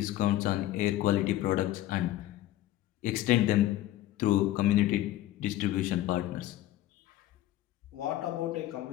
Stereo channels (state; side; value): quieter; right; 14.4 dB